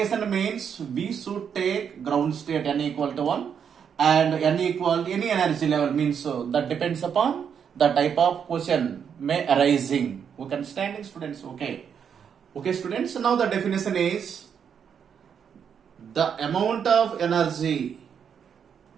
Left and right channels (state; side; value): quieter; left; 7.5 dB